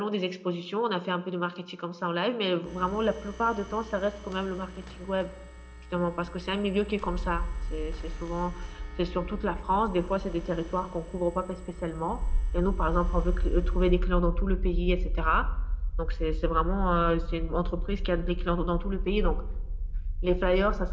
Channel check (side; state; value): both; identical; correlation 1.00